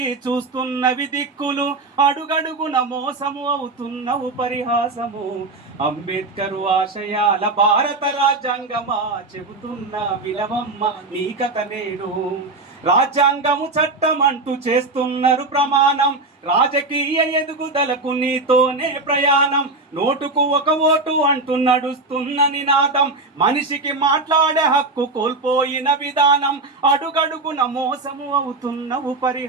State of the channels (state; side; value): quieter; left; 3.3 dB